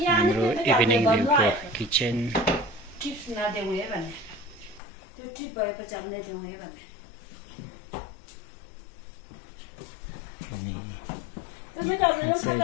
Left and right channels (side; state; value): right; drops out; at 4.8 s